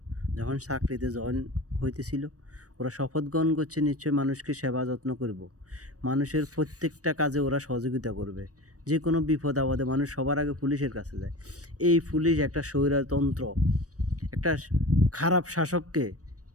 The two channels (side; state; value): left; late; 0.66 ms